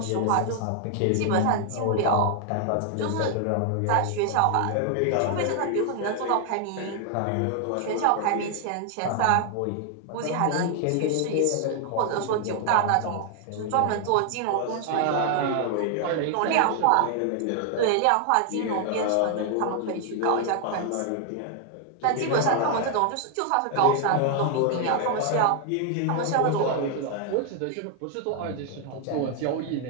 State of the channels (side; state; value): both; different; correlation 0.00